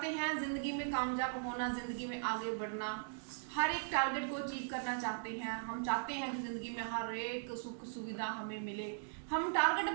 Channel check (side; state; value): left; silent; digital silence